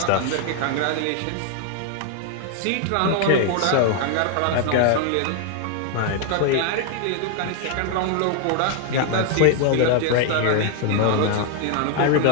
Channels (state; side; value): different; both; correlation 0.00